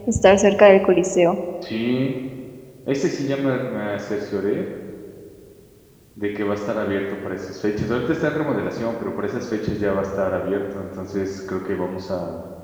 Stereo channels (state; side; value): identical; both; correlation 1.00